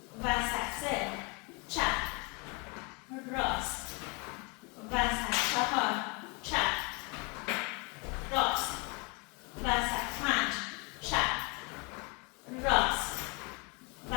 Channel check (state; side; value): quieter; right; 31.4 dB